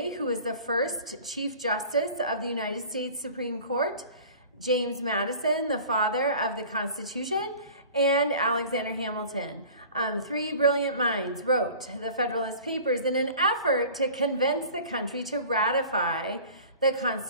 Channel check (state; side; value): inverted; both; correlation -0.44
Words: who was the first Chief Justice of the United States Supreme Court, James Madison, the father of the Constitution, and Alexander Hamilton. 3 brilliant minds wrote the Federalist Papers in an effort to convince the country to ratify the